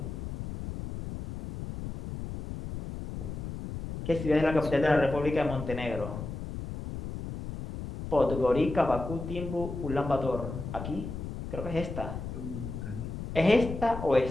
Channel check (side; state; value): left; noise; rumble, 7 dB below the sound